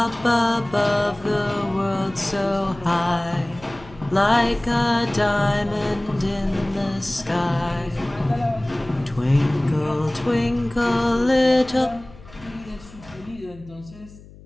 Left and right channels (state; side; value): noise; left; hum, 21 dB below the sound